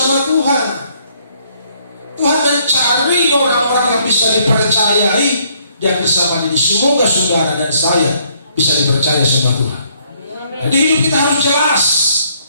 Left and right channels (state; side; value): inverted; both; correlation -0.67